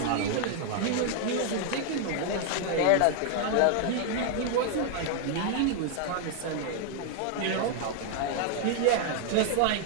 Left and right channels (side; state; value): both; different; correlation 0.00